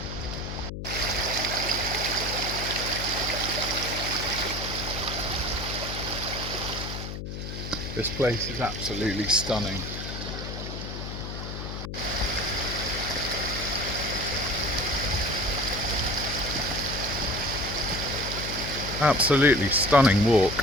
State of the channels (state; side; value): noise; left; hum, 6 dB below the sound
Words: This place is absolutely stunning. Absolutely stunning walk.